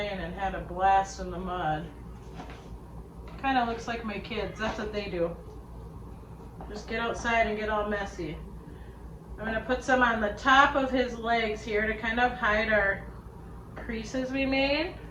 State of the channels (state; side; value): identical; both; correlation 1.00